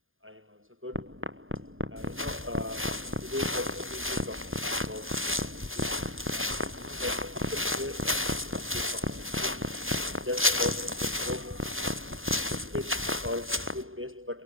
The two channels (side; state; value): left; late; 0.59 ms